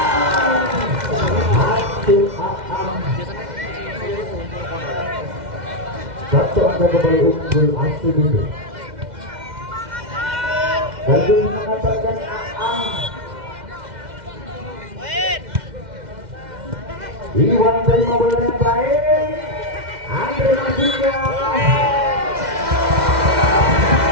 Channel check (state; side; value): late; left; 2.1 ms